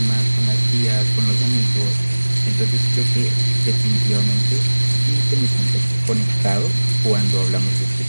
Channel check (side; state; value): both; inverted; correlation -1.00